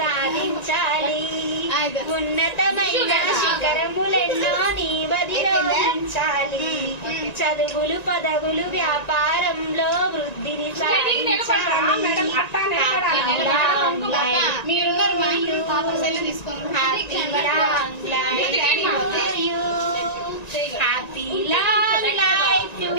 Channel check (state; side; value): late; right; 1.9 ms